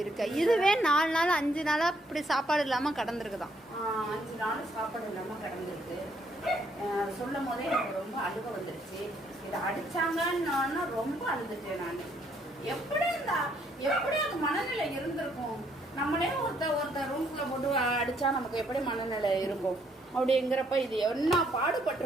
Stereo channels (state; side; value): normal; both; correlation 0.70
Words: இருக்கு. இதுவே 4 நாள் 5 நாளா இப்படி சாப்பாடு இல்லாம கடந்திருக்குதான். 5 நாள் சாப்பாடு இல்லாம கடந்திருக்கு. சொல்லும் போதே எனக்கு ரொம்ப அழுக வந்துருச்சு. இதை அடிச்சாங்கன்னா ரொம்ப அழுதுட்டேன் நான். எப்படி அது மனநிலை இருந்திருக்கும்? நம்மளே ஒருத்தர் ரூம்குள்ள போட்டு அடிச்சா நமக்கு எப்படி மனநிலை இருக்கும்? அப்படிங்கிறப்ப இது என்ன